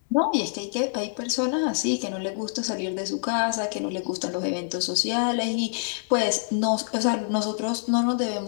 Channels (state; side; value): silent; right; digital silence